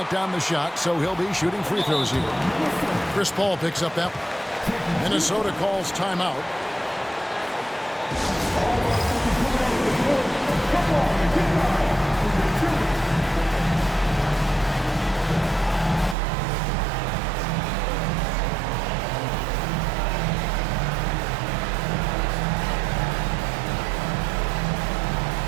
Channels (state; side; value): drops out; left; at 16.2 s